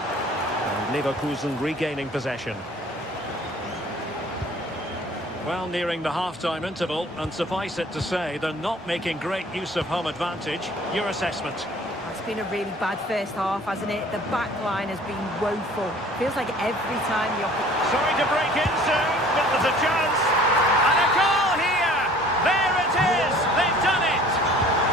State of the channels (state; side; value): normal; both; correlation 0.51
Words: And Leverkusen regaining possession. Well, nearing the half-time interval, and suffice it to say, they're not making great use of home advantage. Your assessment? It's been a really bad first half, hasn't it? The back line has been woeful. Feels like every time the Sorry to break in soon, but there's a chance. And a goal here! There it is! They've done it!